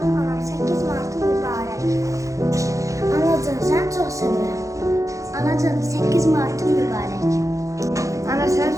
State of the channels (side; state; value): left; late; 0.15 ms